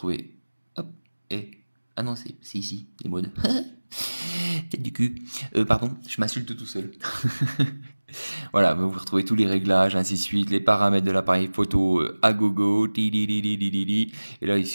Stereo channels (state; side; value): inverted; both; correlation -1.00